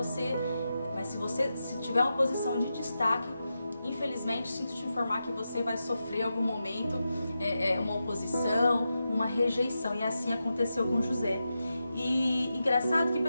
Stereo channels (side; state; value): both; inverted; correlation -0.90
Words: Mas se tiver uma posição de destaque, infelizmente, sinto te informar que você vai sofrer em algum momento uma oposição, uma rejeição. E assim aconteceu com José. E engraçado que